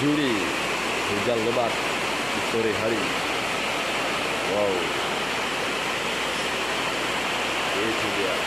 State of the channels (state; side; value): noise; left; hum, 20 dB below the sound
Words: hujan lebat di sore hari. Wow, itu dia.